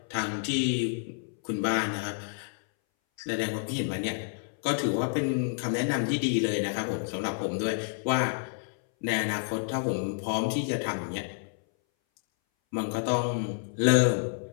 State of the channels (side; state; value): right; silent; 58 dB below the other